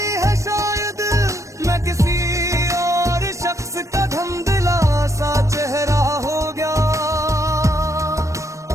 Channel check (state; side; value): late; left; 0.15 ms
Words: है, शायद मैं किसी और शख्स का धुंधला सा चेहरा हो गया।